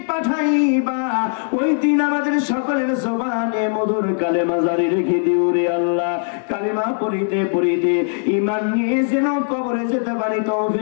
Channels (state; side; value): silent; right; 61 dB below the other